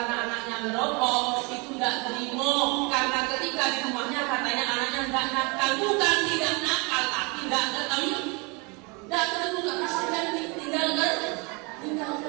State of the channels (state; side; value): quieter; left; 29.9 dB